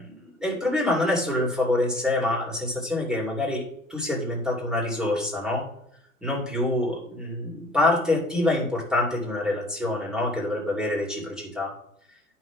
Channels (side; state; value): both; normal; correlation 0.50